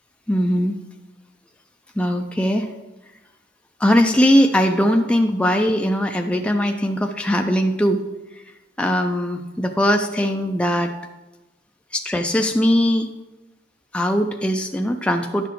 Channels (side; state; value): both; normal; correlation 0.84